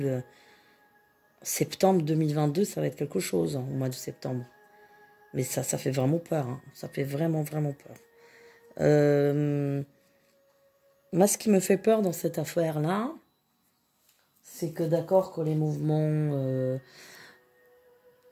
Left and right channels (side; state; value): both; identical; correlation 1.00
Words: Septembre 2022, ça va être quelque chose, hein, au mois de septembre. Mais ça fait vraiment peur, hein. Ça fait vraiment, vraiment peur. Moi, ce qui me fait peur dans cette affaire-là, c'est que d'accord que les mouvements